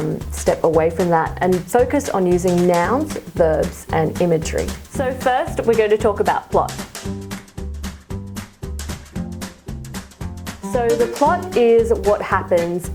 step away from that and focus on using nouns, verbs, and imagery. So first, we're going to talk about plot. So the plot is what happens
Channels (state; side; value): identical; both; correlation 1.00